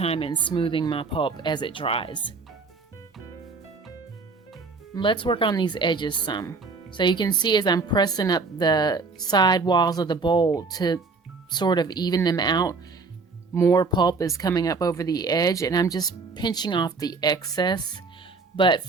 in smoothing my pulp as it dries. Let's work on these edges some. So you can see as I'm pressing up the side walls of the bowl to sort of even them out, more pulp is coming up over the edge, and I'm just pinching off the excess. But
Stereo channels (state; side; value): quieter; left; 4.3 dB